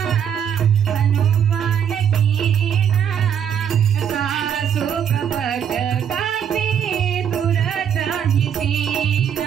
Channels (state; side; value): quieter; left; 8.4 dB